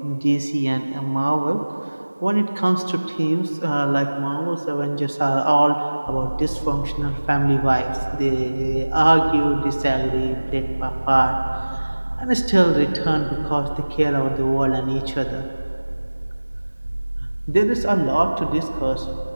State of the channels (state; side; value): inverted; both; correlation -1.00